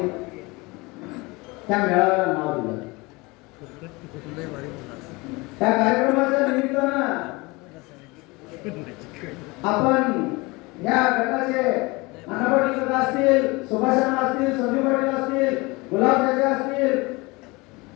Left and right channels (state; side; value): quieter; right; 24.6 dB